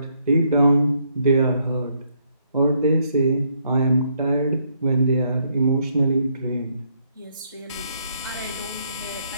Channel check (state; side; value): inverted; both; correlation -0.72